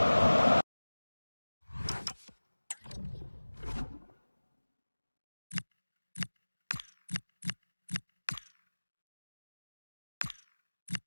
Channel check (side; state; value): both; inverted; correlation -1.00